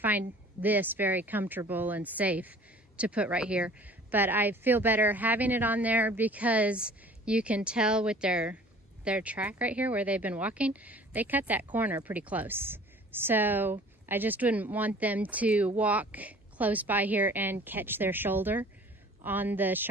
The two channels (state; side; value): normal; both; correlation 0.48